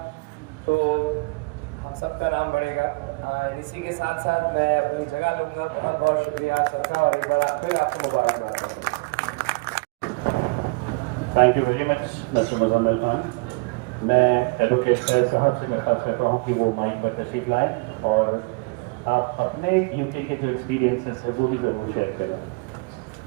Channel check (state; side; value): quieter; left; 29.2 dB